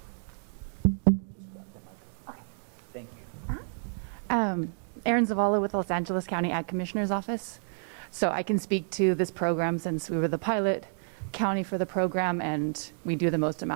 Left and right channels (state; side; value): silent; left; 58 dB below the other